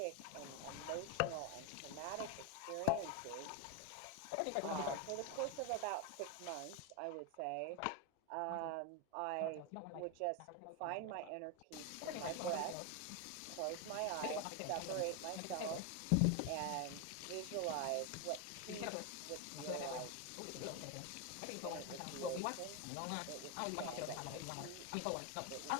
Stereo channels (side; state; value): both; different; correlation 0.01